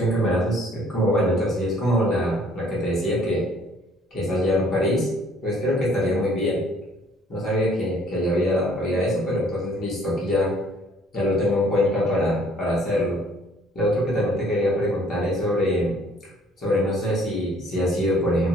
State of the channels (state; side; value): normal; both; correlation 0.59